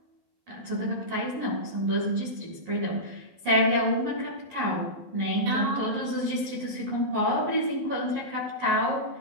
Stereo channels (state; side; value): late; left; 11 ms